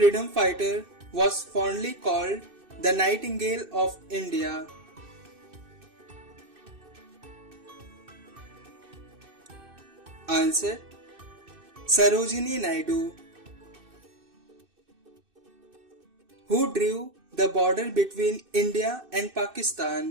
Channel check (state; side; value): late; left; 2.6 ms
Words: fighter was fondly called the Nightingale of India? Answer. Sarojini Naidu. Who drew the border between India and